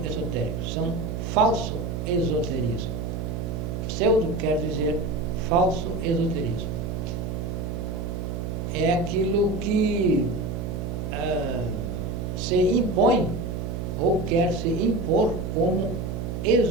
são falso esoterismo. Pseudo quer dizer falso esoterismo. É aquilo que se impõe ou quer se impor como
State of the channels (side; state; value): right; noise; hum, 4 dB below the sound